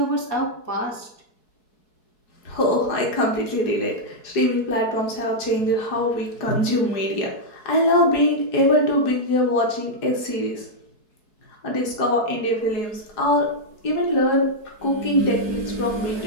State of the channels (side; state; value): right; late; 4.7 ms